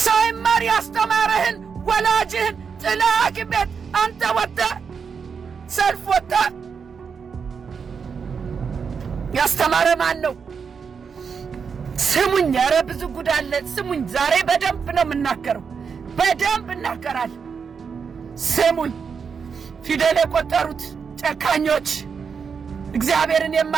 ሳይማር ያስተማረህን ወላጅህን ጥለህ ሐኪም ቤት አንተ ወጥተህ ሰልፍ ወጥተህ ያስተማረ ማን ነው? ስሙኝ፣ ኧረ ብዙ ጉድ አለ። ስሙኝ፣ ዛሬ በደንብ ነው የምናገረው፣ በደንብ እናገራለሁ። ስሙኝ፣ ፊደል የቆጠሩት ጨካኞች፣ እግዚአብሔርን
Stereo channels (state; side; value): quieter; left; 6.1 dB